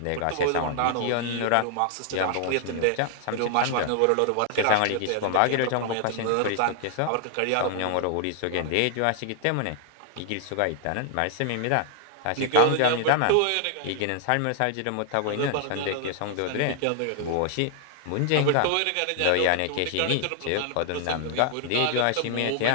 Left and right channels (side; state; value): both; different; correlation 0.00